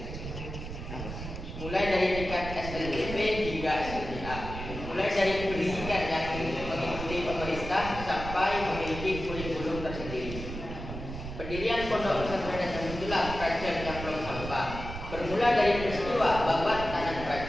mulai dari tingkat SLDP hingga SLTA, mulai dari pendidikan yang mengikuti pemerintah sampai memiliki kurikulum tersendiri. Pendirian pondok pesantren Nahdlatul Kerajaan Jamplong Sampang bermula dari peristiwa babat tanah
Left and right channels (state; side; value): noise; right; rumble, 8 dB below the sound